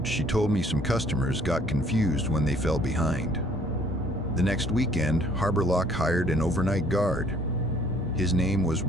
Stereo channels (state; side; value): normal; both; correlation 0.60